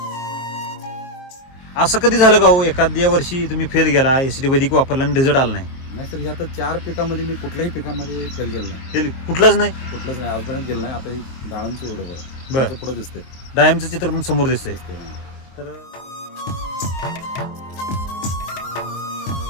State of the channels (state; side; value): late; right; 23 ms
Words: असं कधी झालं का हो एखाद्या वर्षी तुम्ही फेल गेला, एसीटी वैदिक वापरला आणि रिझल्ट आला नाही? नाही सर, आता 4 पिकामध्ये मी कुठल्याही पिकामध्ये फेल गेलो नाही. फेल कुठलाच नाही? कुठलंच नाही आजपर्यंत गेलं नाही. आता डाळांचं एवढं बरं. बरं पुढे दिसते. डायमचं चित्र पण समोर दिसतंय. तर